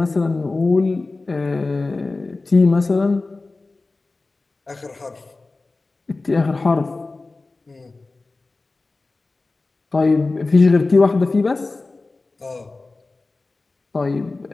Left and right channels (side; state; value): right; quieter; 3.4 dB